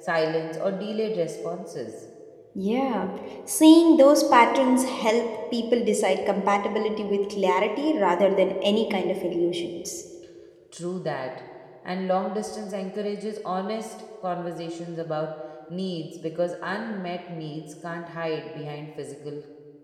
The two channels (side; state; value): both; identical; correlation 1.00